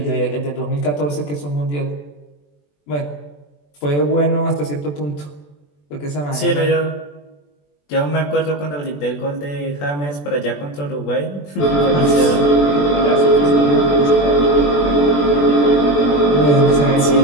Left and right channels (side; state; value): right; late; 21 ms